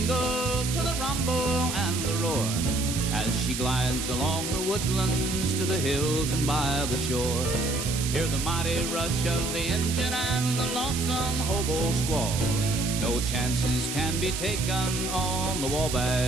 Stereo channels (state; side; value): noise; right; hiss, 5 dB below the sound